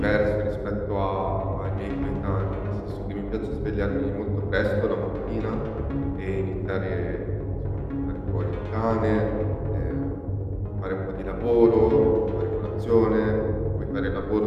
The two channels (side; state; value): both; identical; correlation 1.00